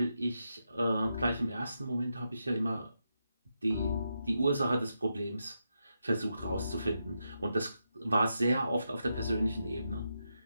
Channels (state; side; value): inverted; both; correlation -0.84